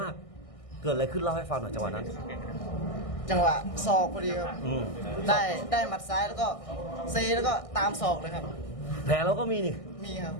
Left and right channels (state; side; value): late; right; 1.6 ms